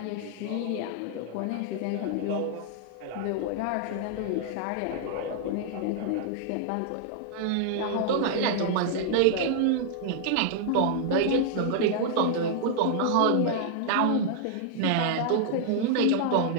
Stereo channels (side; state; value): both; different; correlation -0.01